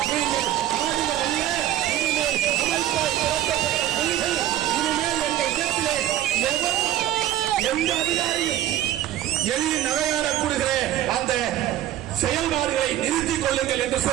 நீங்கள் எந்த அதிகாரியும் எளிய நகையாடக்கூடிய அந்த செயல்பாடுகளை நிறுத்திக் கொள்ளுங்கள் என்று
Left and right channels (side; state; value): left; quieter; 12.7 dB